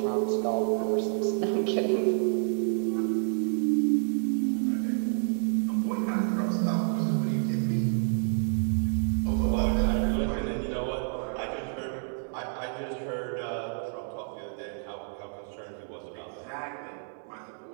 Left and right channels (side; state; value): left; silent; 59 dB below the other